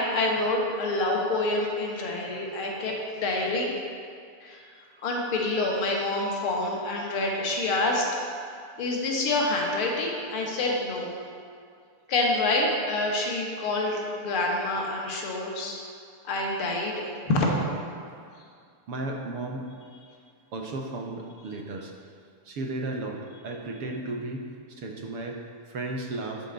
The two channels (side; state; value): left; late; 7.0 ms